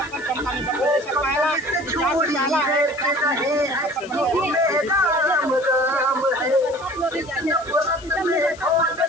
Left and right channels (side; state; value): left; noise; hiss, 21 dB below the sound